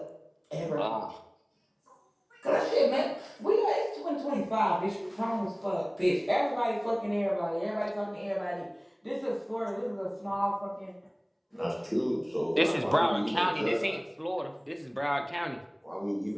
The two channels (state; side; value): identical; both; correlation 1.00